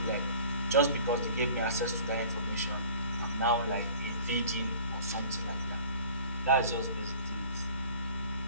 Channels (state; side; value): inverted; both; correlation -0.47